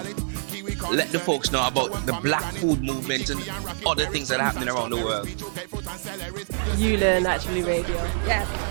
kiwi, corn. Let the folks know about the black food movement and other things that are happening around the world. You Learn Naturally Radio. Yes.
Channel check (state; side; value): silent; left; digital silence